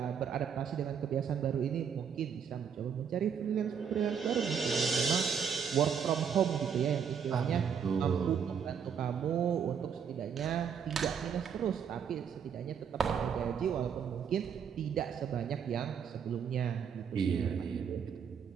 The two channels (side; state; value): left; quieter; 7.3 dB